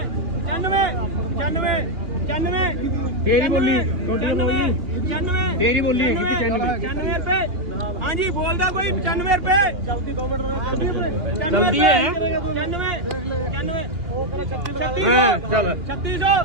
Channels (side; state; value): left; late; 2.8 ms